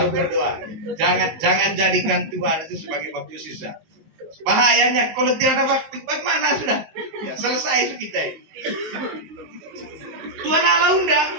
berdoa. Jangan jadikan Tuhan itu sebagai waktu sisa. Bahayanya kalau tidak ada waktu, bagaimana sudah? Ya, selesai kita ini. Tuhan Allah undang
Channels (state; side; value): late; left; 19 ms